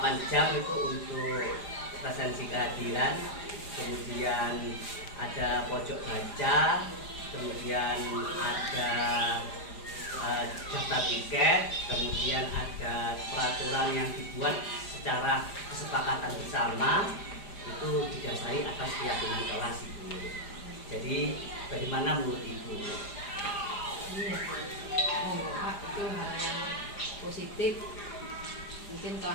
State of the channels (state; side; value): late; right; 4.9 ms